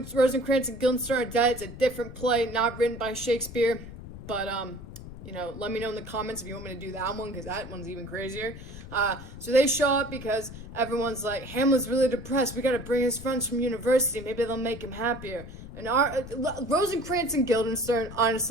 and Guildenstern are dead. It's a different play, not written by Shakespeare. But, let me know in the comments if you want me to do that one, because that one's even crazier. So they show up because everyone's like, Hamlet's really depressed. We gotta bring his friends from university. Maybe they'll make him happier. And Rosencrantz and Guildenstern,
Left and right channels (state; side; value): noise; left; rumble, 13 dB below the sound